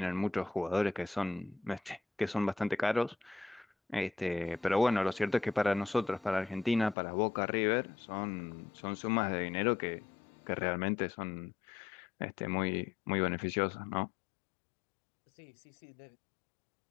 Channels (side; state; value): right; drops out; at 7.0 s